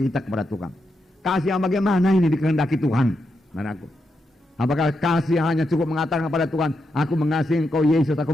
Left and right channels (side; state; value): both; normal; correlation 0.84